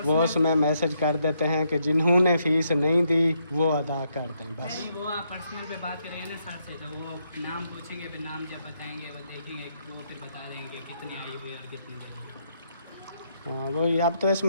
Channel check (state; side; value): inverted; both; correlation -0.76